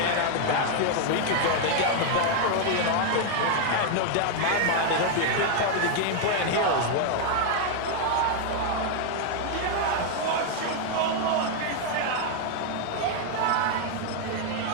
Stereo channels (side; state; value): both; different; correlation 0.00